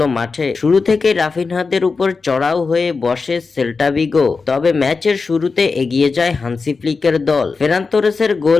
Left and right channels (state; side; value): quieter; right; 4.5 dB